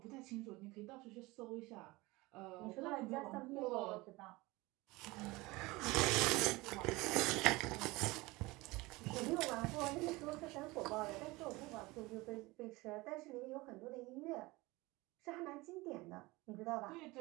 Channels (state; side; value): quieter; left; 22.0 dB